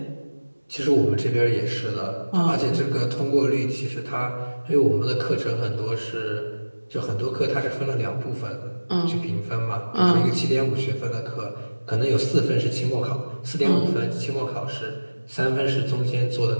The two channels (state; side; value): inverted; both; correlation -1.00